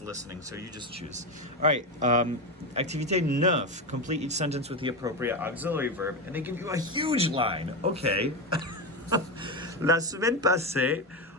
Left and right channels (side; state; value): both; normal; correlation 0.14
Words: listening. So you just choose. All right. Activité 9. Complete each sentence with the appropriate auxiliary verb, and they give you a huge line. Okay. La semaine passée.